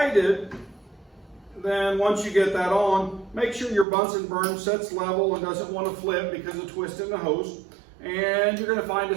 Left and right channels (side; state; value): left; drops out; at 3.9 s